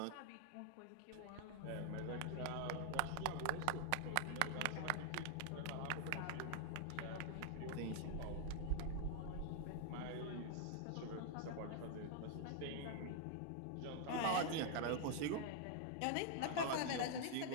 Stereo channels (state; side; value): different; both; correlation 0.00